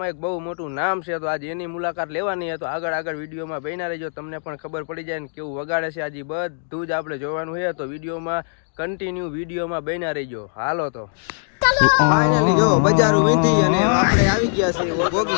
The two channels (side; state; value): right; silent; digital silence